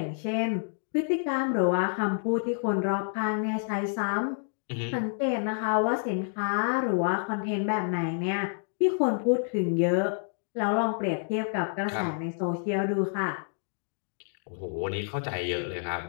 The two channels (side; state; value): right; silent; digital silence